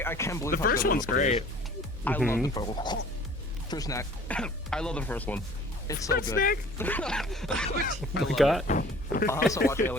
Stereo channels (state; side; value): normal; both; correlation 0.49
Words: can't believe The how first good it one's is. great. I love the first one. Fruit snack. I love the first one. It's so good. We got. I'll also watch